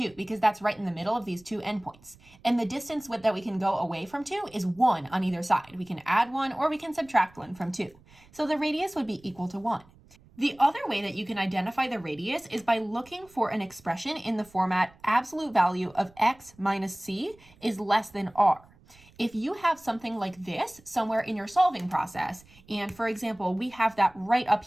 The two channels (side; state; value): right; noise; rumble, 27 dB below the sound